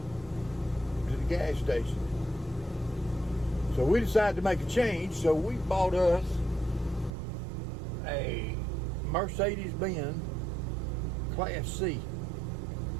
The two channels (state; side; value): drops out; left; at 7.1 s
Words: the gas station. So we decided to make a change, so we bought us a Mercedes-Benz Class C.